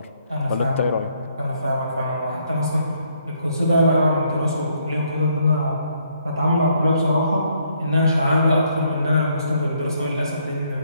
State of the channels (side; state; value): both; inverted; correlation -0.70